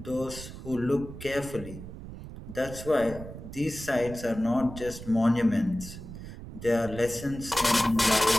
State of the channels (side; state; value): right; noise; rumble, 12 dB below the sound